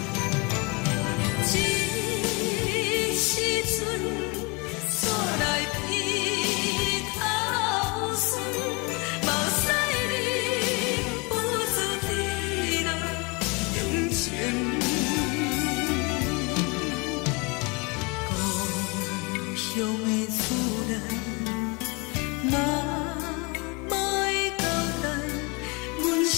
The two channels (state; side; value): quieter; right; 28.8 dB